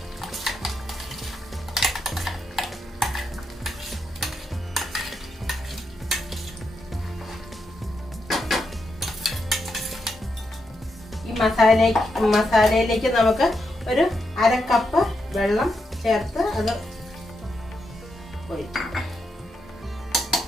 ഈ മസാലയിലേക്ക് നമുക്ക് ഒരു 1/2 കപ്പ് വെള്ളം ചേർത്ത് അത് ഒഴിക്കും.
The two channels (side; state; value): both; normal; correlation 0.83